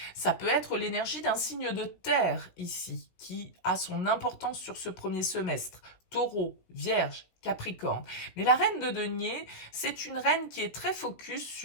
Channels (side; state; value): right; late; 17 ms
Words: Ça peut être l'énergie d'un signe de terre ici, qui a son importance sur ce premier semestre. Taureau, Vierge, Capricorne. Mais la reine de denier, c'est une reine qui est très focus